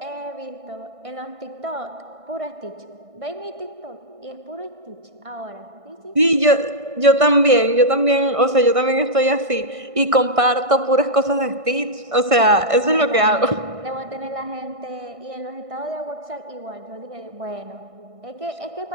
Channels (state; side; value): late; left; 1.6 ms